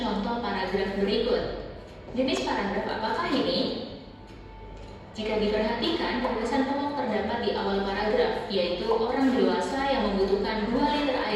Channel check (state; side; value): identical; both; correlation 1.00